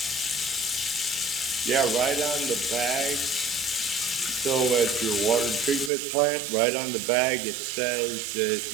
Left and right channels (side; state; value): left; drops out; at 5.9 s